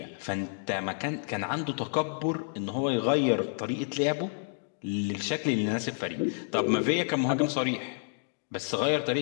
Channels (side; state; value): right; silent; digital silence